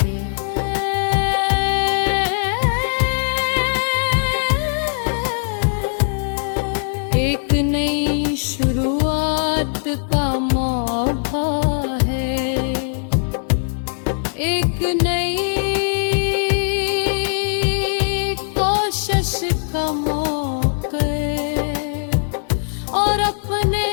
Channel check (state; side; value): silent; right; digital silence